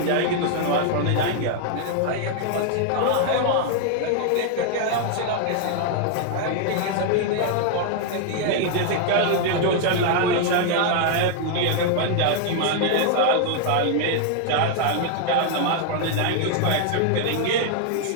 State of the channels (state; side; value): different; both; correlation 0.00